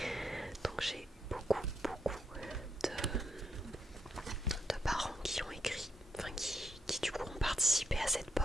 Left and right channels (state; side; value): normal; both; correlation 0.80